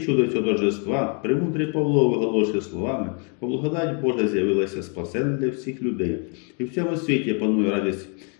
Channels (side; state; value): right; quieter; 39.0 dB